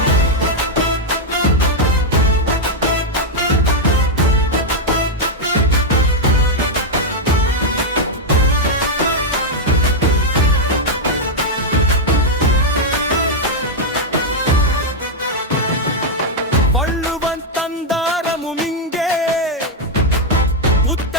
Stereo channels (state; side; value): normal; both; correlation -0.01